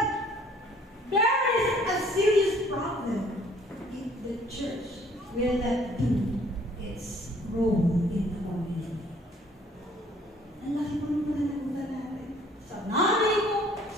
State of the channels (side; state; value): both; normal; correlation 0.58